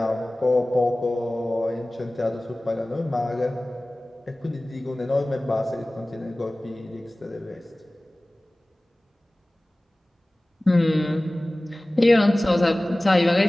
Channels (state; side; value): normal; both; correlation 0.98